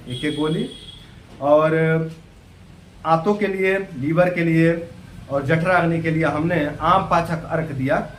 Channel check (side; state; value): both; identical; correlation 1.00